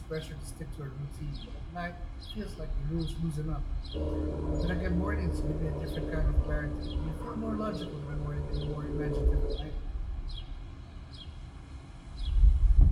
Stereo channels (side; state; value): both; identical; correlation 1.00